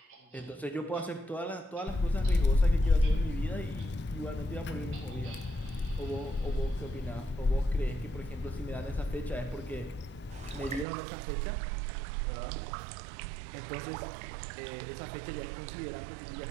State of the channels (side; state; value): left; drops out; at 10.9 s